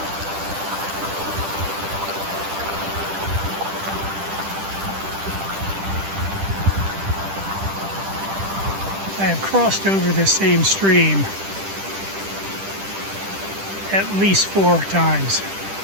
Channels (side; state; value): left; late; 10 ms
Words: I have crossed over this same stream at least 4 times.